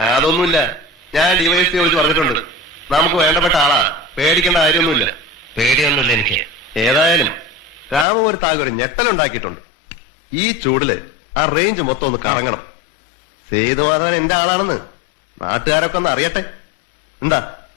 അതൊന്നുമില്ല. ഞാൻ ഡിവൈഎസ്പി വിളിച്ച് പറഞ്ഞിട്ടുണ്ട്. നമുക്ക് വേണ്ടപ്പെട്ട ആളാ, പേടിക്കേണ്ട കാര്യമൊന്നുമില്ല. പേടിയൊന്നുമില്ല എനിക്ക്. ഏതായാലും രാമ ഒരു താങ്കൾ ഞെട്ടലുണ്ടാക്കിയിട്ടുണ്ട്. ഈ ചൂടില് ആ റേഞ്ച് മൊത്തം ഒന്ന് കറങ്ങണം. സേതുവാദൻ എന്റെ ആളാണെന്ന് നാട്ടുകാരൊക്കെ ഒന്ന് അറിയട്ടെ. എന്താ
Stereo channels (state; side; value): drops out; right; at 8.1 s